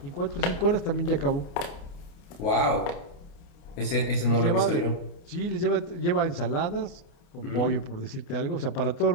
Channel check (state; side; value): late; right; 29 ms